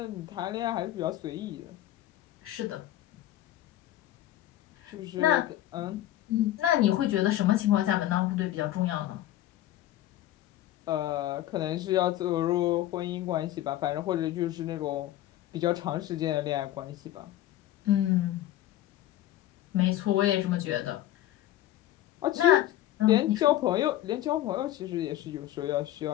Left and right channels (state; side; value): quieter; right; 13.7 dB